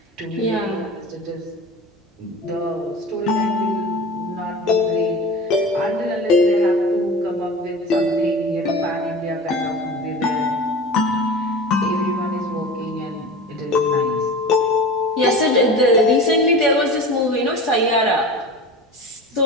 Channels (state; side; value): normal; both; correlation 0.34